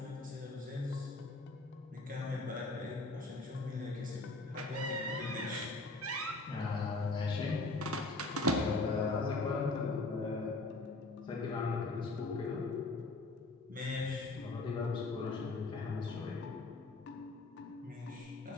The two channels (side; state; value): right; quieter; 3.2 dB